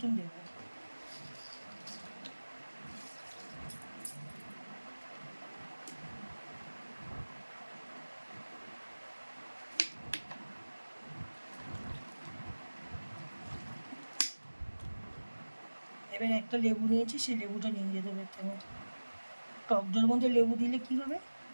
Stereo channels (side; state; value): both; inverted; correlation -1.00